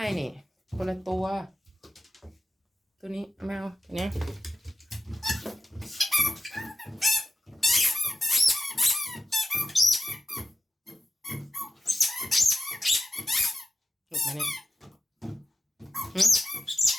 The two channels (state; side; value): normal; both; correlation 0.92